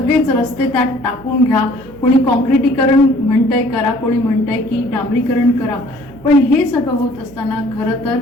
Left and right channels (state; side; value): noise; right; hum, 22 dB below the sound